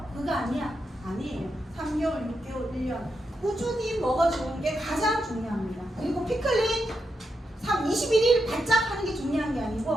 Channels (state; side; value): normal; both; correlation 0.84